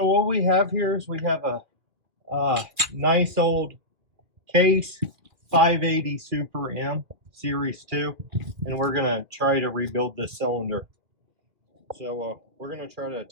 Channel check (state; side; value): late; left; 2.4 ms